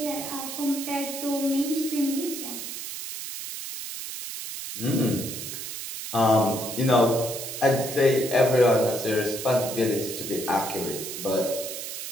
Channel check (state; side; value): noise; right; hiss, 7 dB below the sound